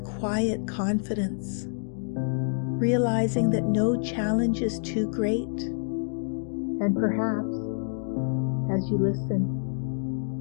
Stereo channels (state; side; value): silent; right; digital silence